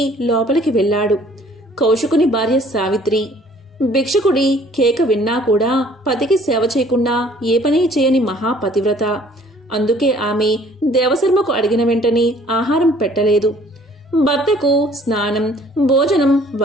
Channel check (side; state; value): both; normal; correlation 0.56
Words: లోపలికి వెళ్లాడు. కౌశికుని భార్య సావిత్రి. భిక్షకుడి కేక విన్నా కూడా పతికి సేవ చేయకుండా ఏ పని చేయని మహాపతివ్రత. అందుకే ఆమె దేవశర్మకు అడిగిన వెంటనే ఆహారం పెట్టలేదు. భర్తకు స్నానం, భోజనం